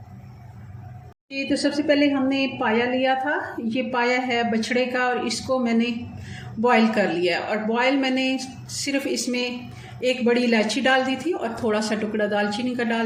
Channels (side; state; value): both; identical; correlation 1.00